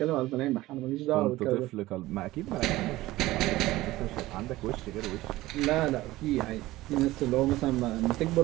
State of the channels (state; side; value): quieter; left; 17.6 dB